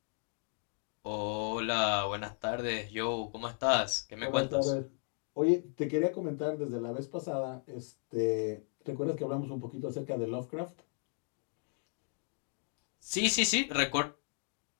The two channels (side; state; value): right; silent; 54 dB below the other